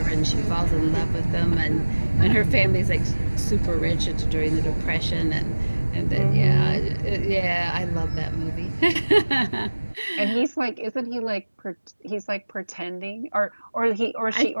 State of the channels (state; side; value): inverted; both; correlation -1.00